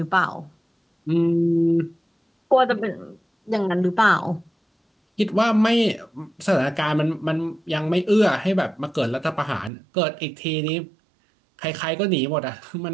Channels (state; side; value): drops out; left; at 9.7 s